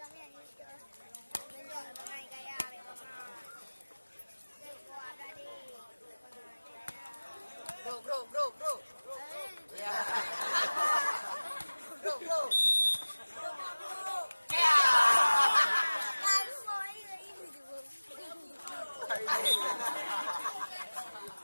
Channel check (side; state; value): both; inverted; correlation -1.00